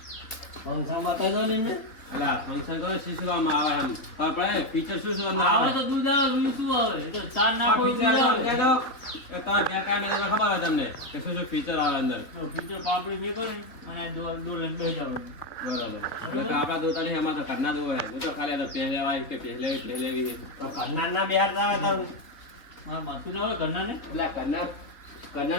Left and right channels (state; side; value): late; right; 3.3 ms